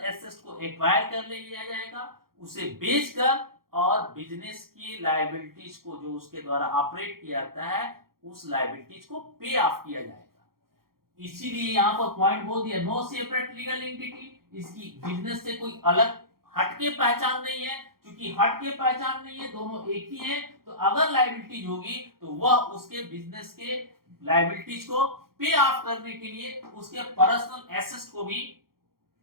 एसेट को एक्वायर कर लिया जाएगा, उसे बेचकर और बिजनेस की लायबिलिटीज को जो उसके द्वारा ऑपरेट किया जाता है उस लायबिलिटीज को पे ऑफ किया जाएगा। इसीलिए यहाँ पर पॉइंट बोल दिया, नो सेपरेट लीगल एंटिटी, इसकी बिजनेस से कोई अलग हटके पहचान नहीं है। क्योंकि हटके पहचान नहीं है, दोनों एक ही है, तो अगर लायबिलिटीज होगी तो वह उसके बिजनेस के लायबिलिटीज को पे ऑफ करने के लिए उसके पर्सनल एसेट्स को भी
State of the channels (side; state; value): left; late; 0.93 ms